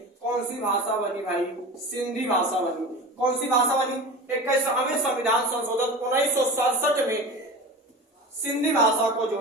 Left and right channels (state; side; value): normal; both; correlation 0.32